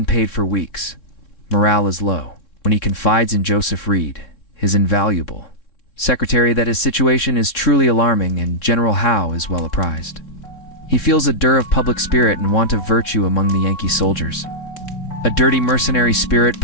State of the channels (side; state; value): right; late; 3.6 ms